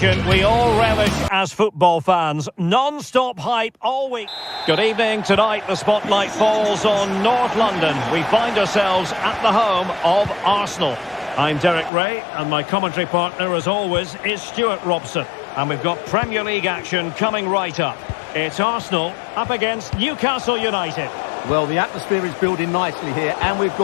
we all relish as football fans. Non-stop hype all week. Good evening. Tonight the spotlight falls on North London. We find ourselves at the home of Arsenal. I'm Derek Ray, and my commentary partner, as always, is Stuart Robson. And we've got Premier League action coming right up. It's Arsenal up against Newcastle United. Well, the atmosphere is building nicely here, and we've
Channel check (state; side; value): drops out; right; at 11.9 s